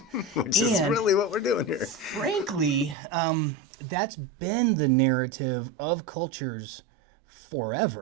which is And- really what we're doing here. Frankly, that's been the narrative of cultures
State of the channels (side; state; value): left; drops out; at 3.0 s